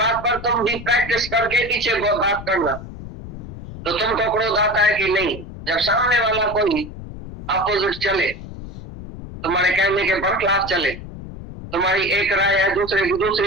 पर तुम भी प्रैक्टिस करके पीछे बात करना, तो तुमको क्रोध आता है कि नहीं। जब सामने वाला कोई अपोजिट चले, तुम्हारे कहने के बरखिलाफ चले, तुम्हारी एक राय है, दूसरे की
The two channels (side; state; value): left; noise; rumble, 12 dB below the sound